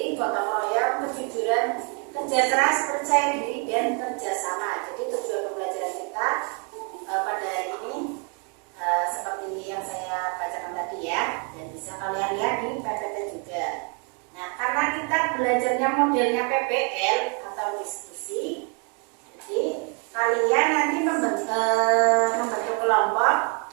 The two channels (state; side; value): quieter; left; 37.0 dB